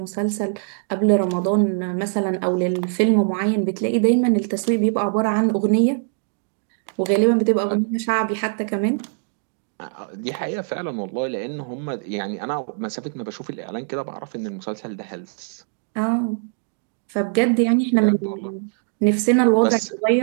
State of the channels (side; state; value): left; silent; 63 dB below the other